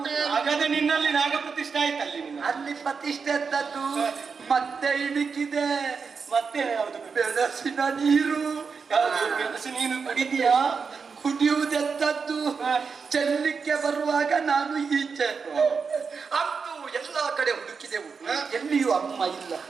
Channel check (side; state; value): left; quieter; 5.4 dB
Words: ಹಾಗಾದ್ರೆ ನಿನ್ನಲ್ಲಿ ನಾಗ ಪ್ರತಿಷ್ಠೆ ಆಯ್ತಲ್ಲಿ ನಿನ್ನ. ಅಲ್ಲಿ ಪ್ರತಿಷ್ಠೆ ಎಂತದ್ದು? ಮತ್ತೆ ಇಣುಕಿದೆ. ಮತ್ತೆ ಯಾವುದು? ಬೆಳಸಿನ ನೀರು. ಯಾವುದು ಮೆಣಸು ನೀನು ಕುಡಿದೀಯಾ? ಕುಡಿಯುವುದೆಂತದ್ದು? ಚೆಲ್ಲಿಕ್ಕೆ ಬರುವಾಗ ನಾನು ಈಚೆ. ಅಂತೂ ಎಲ್ಲಾ ಕಡೆ ಹುಡುಕಿದೆವು, ಎಲ್ಲಿಯೂ ಅಮ್ಮ ಇಲ್ಲ.